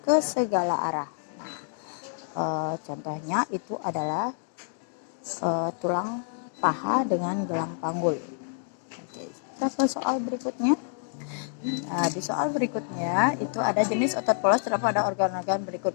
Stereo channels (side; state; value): right; silent; digital silence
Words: ke segala arah. Nah, contohnya itu adalah tulang paha dengan gelang panggul. Oke, kita ke soal berikutnya. Nah, di soal berikutnya itu ada jenis otot polos terdapat pada organ-organ berikut